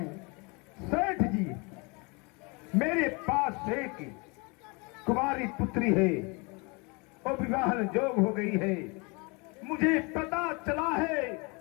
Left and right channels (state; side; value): quieter; right; 29.7 dB